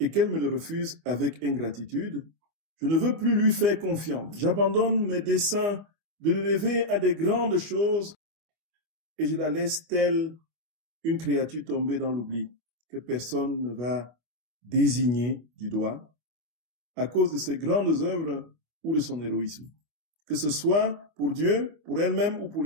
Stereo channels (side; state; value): left; late; 25 ms